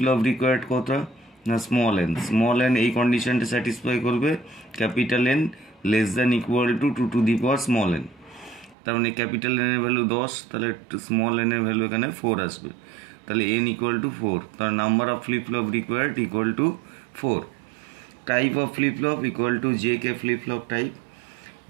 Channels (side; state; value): left; drops out; at 8.8 s